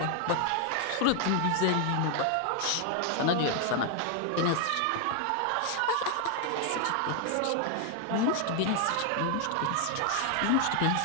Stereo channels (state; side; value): different; both; correlation 0.00